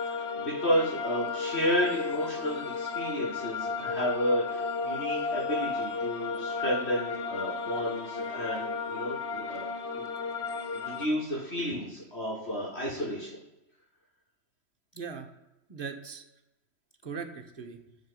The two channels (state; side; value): late; right; 3.1 ms